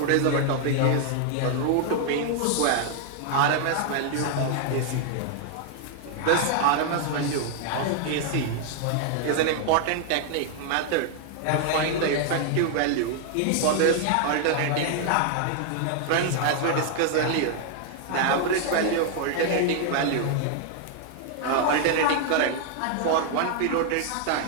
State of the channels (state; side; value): different; both; correlation 0.00